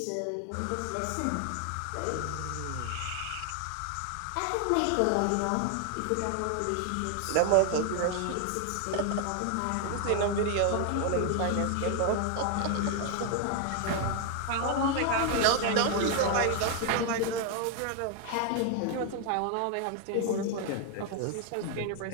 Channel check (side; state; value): both; different; correlation 0.00